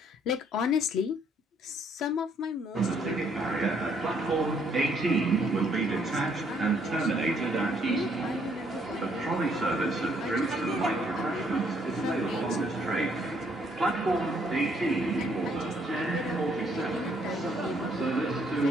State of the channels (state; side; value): normal; both; correlation 0.68